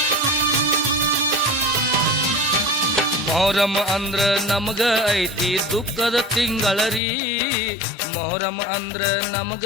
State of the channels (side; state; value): right; drops out; at 7.0 s